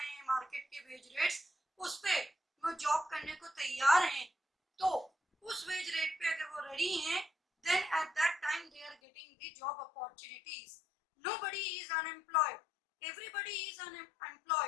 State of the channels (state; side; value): drops out; right; at 9.0 s